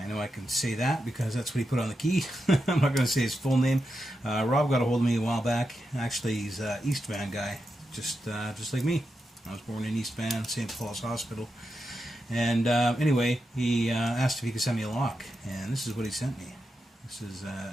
know I can say that because that's what he put on the key. I'm not going to say his full name. Rob got a hold of me a while back. Actually, he's an East Van guy, just like me. I was born in East Van, St. Paul's Hospital. And anyway, he asked if he could send me a lock, and this is what he sent me. This is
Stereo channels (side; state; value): both; normal; correlation 0.87